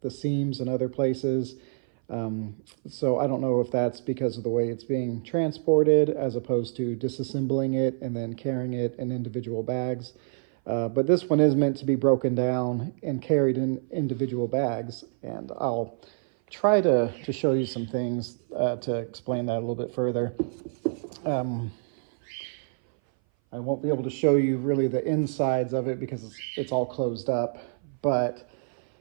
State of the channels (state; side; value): silent; left; 58 dB below the other